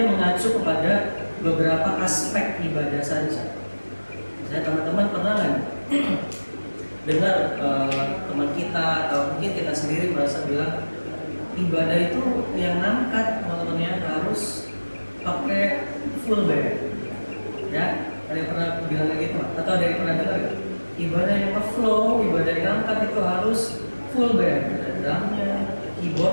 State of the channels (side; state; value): both; inverted; correlation -1.00